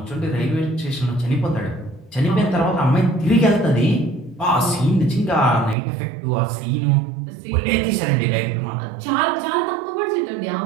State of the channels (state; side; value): drops out; left; at 5.8 s